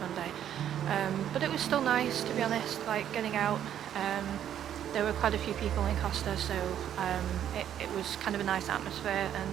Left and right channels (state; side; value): quieter; left; 10.3 dB